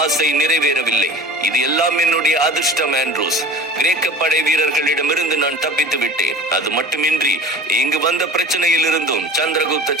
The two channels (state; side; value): normal; both; correlation 0.40